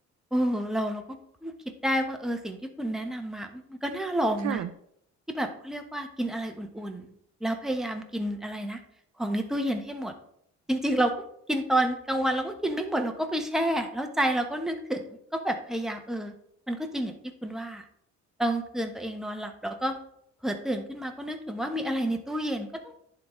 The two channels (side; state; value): both; normal; correlation 0.80